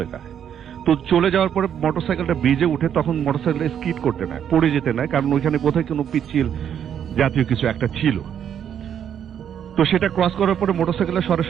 যায়। তো চলে যাওয়ার পরে মোটরসাইকেলটা ব্রিজে উঠে, তখন মোটরসাইকেলটা স্কিড করতে নেয়, পড়ে যেতে নেয়, কারণ ওইখানে কোথায় কোনো পিচ্ছিল জাতীয় কিছু একটা ছিল। তো সেটা ক্রস করার পরে মোটরসাইকেলটা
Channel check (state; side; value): quieter; left; 9.0 dB